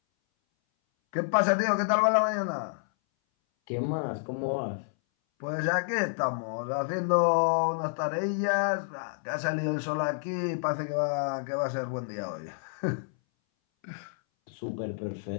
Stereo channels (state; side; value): silent; right; 58 dB below the other